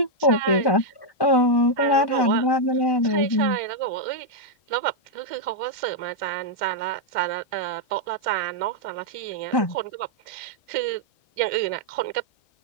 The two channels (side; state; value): right; late; 1.1 ms